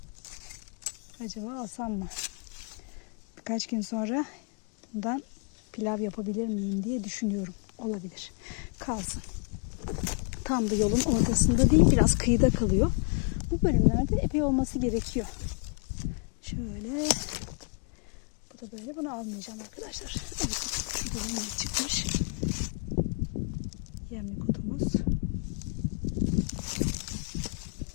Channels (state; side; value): quieter; right; 36.4 dB